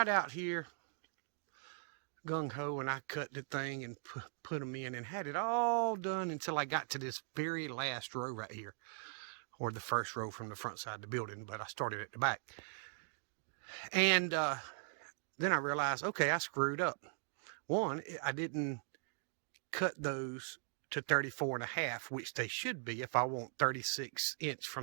out here gung-ho and I cut the thing and put them in and had it all done until I got to this very last row right here, or the first row from the front side of the building, but I started at the back. And then I realized, okay, I screwed up. One, I didn't cut those to 34.5, which they should be if I want 36-inch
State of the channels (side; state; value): left; silent; digital silence